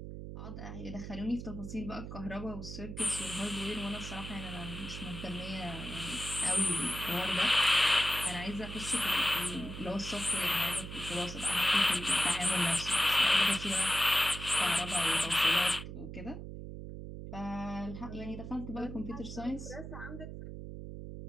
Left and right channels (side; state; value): right; noise; hum, 9 dB below the sound